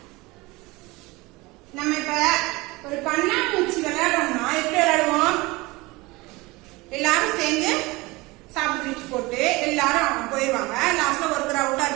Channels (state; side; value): quieter; left; 22.8 dB